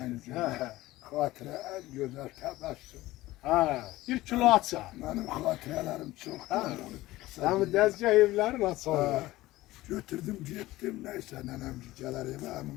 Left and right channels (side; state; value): right; quieter; 17.6 dB